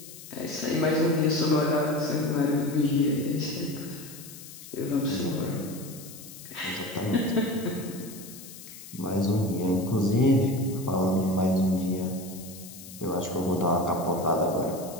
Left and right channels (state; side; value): noise; left; hiss, 15 dB below the sound